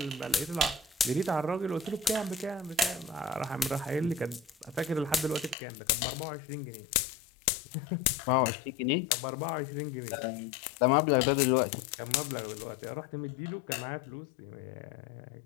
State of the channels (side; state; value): right; drops out; at 5.6 s